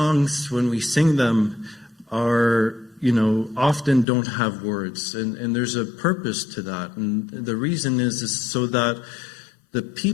when we sing them, are often don't have words, and there's a purpose to that. And the reason is so that the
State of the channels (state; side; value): drops out; right; at 4.0 s